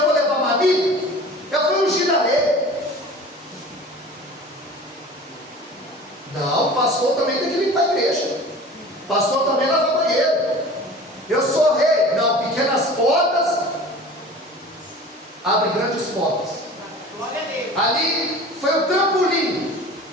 vou levar uma amiga. Eu fui ungir a rei. Não, o pastor também tem que limpar a igreja. O pastor também lava banheiro. Eu sou rei. Não, pequenas portas abrem grandes portas. Ali foi o trampolim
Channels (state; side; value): normal; both; correlation 0.40